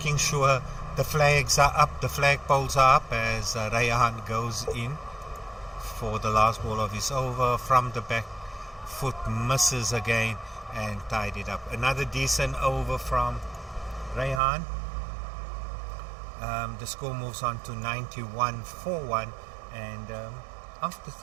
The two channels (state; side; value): drops out; left; at 14.4 s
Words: sure the flags are up, the flagpoles are up as Rayhan goes in for the last ball of his over from the back foot, misses again and tied it up. Another decent over from Rayhan. The score moves on to 91-41, and after